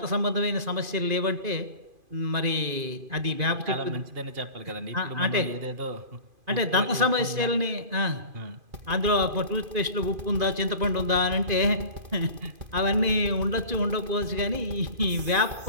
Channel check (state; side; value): late; left; 2.5 ms